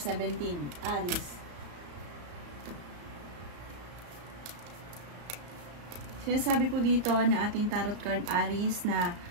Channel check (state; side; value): late; left; 34 ms